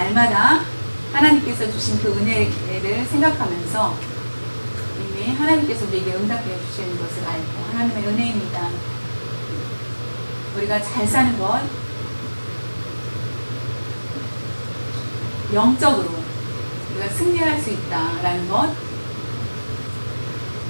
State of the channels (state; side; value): inverted; both; correlation -1.00